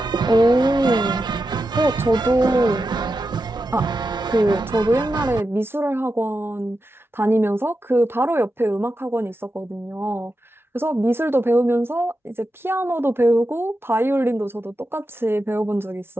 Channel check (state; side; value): normal; both; correlation 0.89